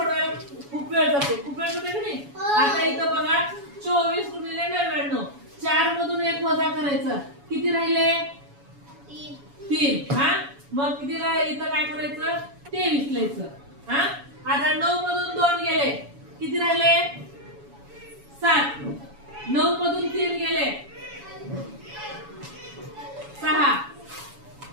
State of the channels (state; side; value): late; left; 7.1 ms